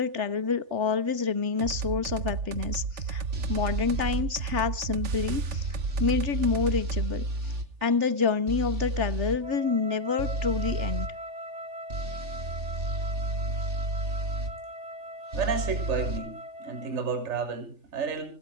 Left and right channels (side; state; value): left; late; 3.4 ms